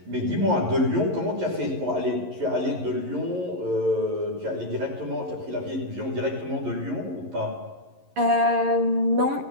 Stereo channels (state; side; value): late; left; 11 ms